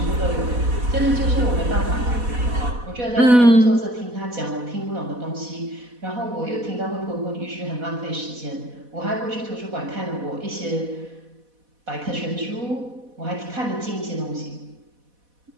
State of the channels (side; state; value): left; late; 4.1 ms